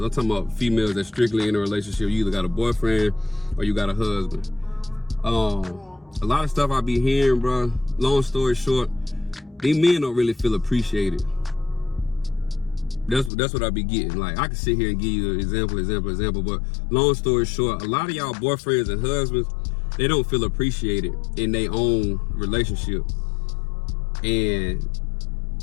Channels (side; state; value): right; drops out; at 13.3 s